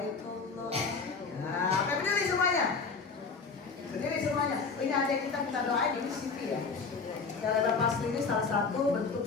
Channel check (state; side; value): quieter; right; 4.8 dB